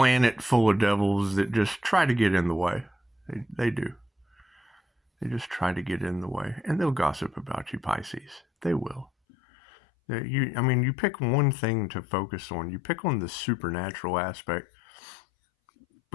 full of devils that just try to get in the way. They do. They just try to get in the way, and they'll gossip about you, Pisces. They will. You pick one thing to focus on. You pick on the supernatural aspect,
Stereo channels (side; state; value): right; drops out; at 9.1 s